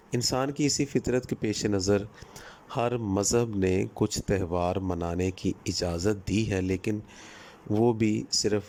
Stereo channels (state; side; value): identical; both; correlation 1.00